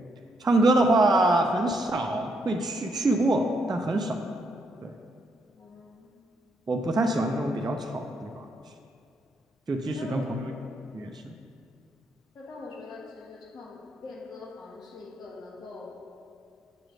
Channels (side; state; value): both; normal; correlation 0.76